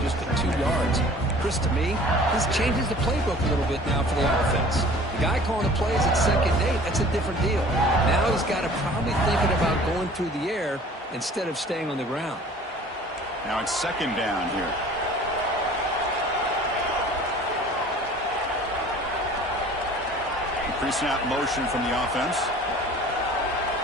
just at 2 yards. Chris, to me, this changes the playbook a little bit now for the offense. The guy calling the plays at 2nd and 8, that's a different deal. Now he's got to probably thinking about going through the air instead of staying on the ground. Now it's 2nd down here. Pre-snap motion from the offense.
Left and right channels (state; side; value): normal; both; correlation 0.47